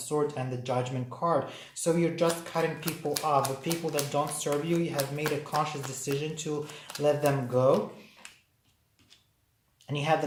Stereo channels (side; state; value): both; identical; correlation 1.00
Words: and the Judgment card. So you're just cutting people off. The people that don't serve you, you have made a conscious decision to let them go. And you have